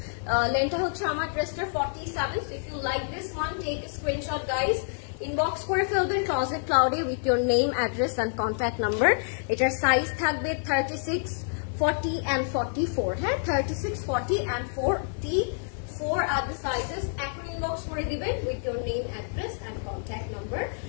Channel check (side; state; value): right; silent; 59 dB below the other